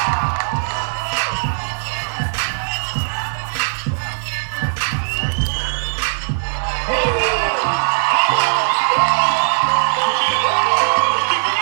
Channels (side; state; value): left; silent; digital silence